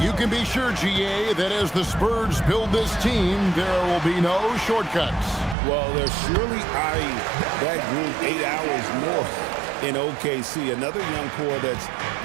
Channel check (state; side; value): drops out; left; at 5.6 s